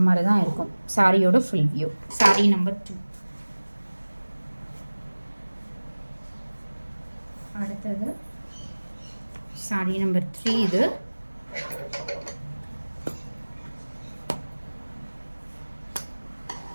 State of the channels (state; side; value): inverted; both; correlation -1.00